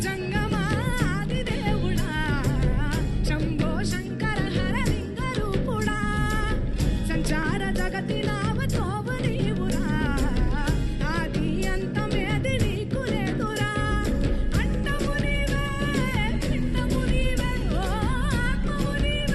జంగమాది దేవుడా, శంభో శంకర హర లింగ రూపుడా, సంచార జగతి నావతోవ నీవురా, ఆది అంతమేది నీకు లేదురా. అండము నీవే,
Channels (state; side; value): identical; both; correlation 1.00